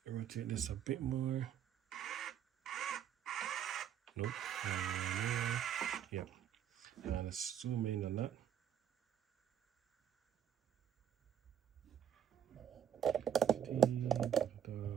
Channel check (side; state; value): left; quieter; 9.3 dB